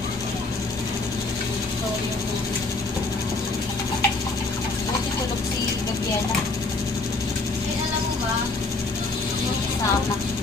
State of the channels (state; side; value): quieter; right; 3.4 dB